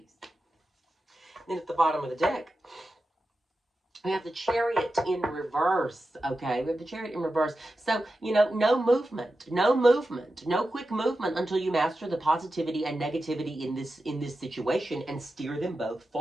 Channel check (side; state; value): both; normal; correlation 0.91